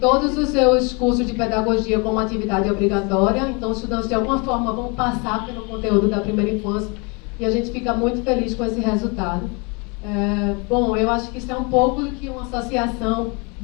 os seus cursos de pedagogia como atividade obrigatória, então os estudantes de alguma forma vão passar pelo conteúdo da primeira infância, e a gente fica muito feliz com esse resultado. Bom, eu acho que isso é um pouco do que uma associação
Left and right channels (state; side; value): quieter; right; 31.1 dB